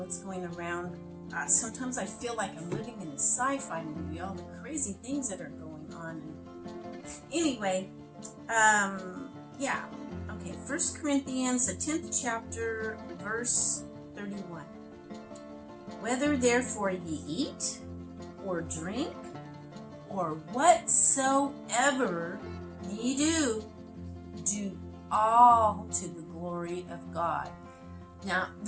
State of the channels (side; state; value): both; identical; correlation 1.00